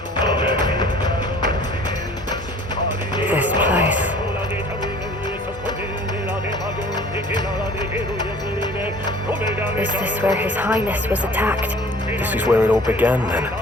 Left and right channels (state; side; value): normal; both; correlation 0.49